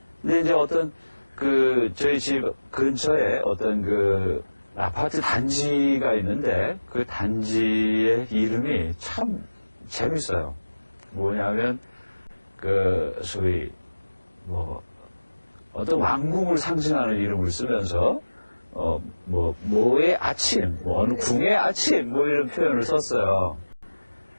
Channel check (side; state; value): both; inverted; correlation -1.00